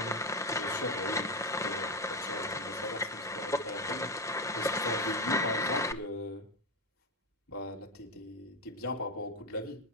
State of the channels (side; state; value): both; normal; correlation 0.11